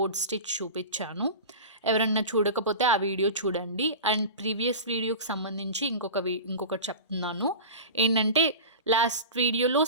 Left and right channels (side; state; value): both; inverted; correlation -0.32